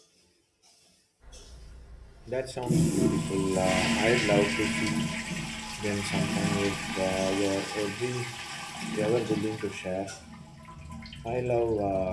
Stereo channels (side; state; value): both; identical; correlation 1.00